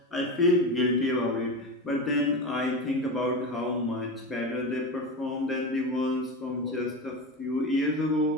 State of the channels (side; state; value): both; normal; correlation 0.22